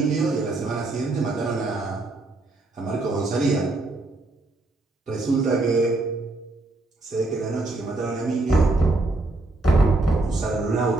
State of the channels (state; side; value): quieter; left; 3.0 dB